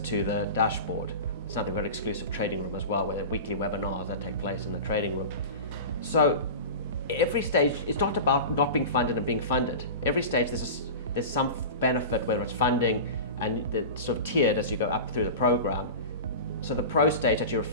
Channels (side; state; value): both; inverted; correlation -0.31